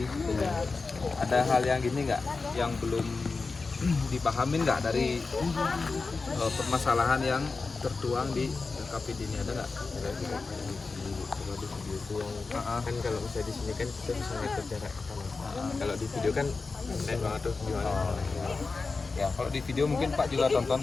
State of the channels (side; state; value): right; quieter; 4.1 dB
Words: Ada hal yang gini nggak? Yang belum dipahamin nggak dari permasalahan yang tertuang di KPD ini, ada nggak? Kan kalau misalnya di sini kan kita bisa ngatur jarak kan. Kalau di video kan lain banget tuh gimana. Ya, kalau di video mungkin Pak juga tonton